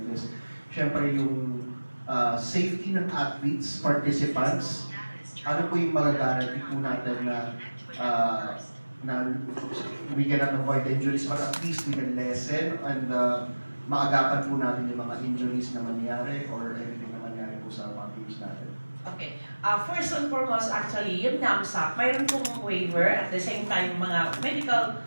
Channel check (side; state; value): both; inverted; correlation -1.00